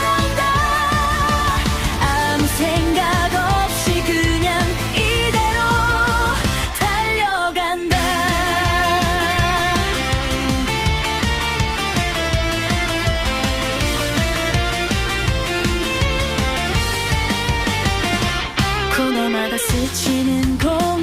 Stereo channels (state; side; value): identical; both; correlation 1.00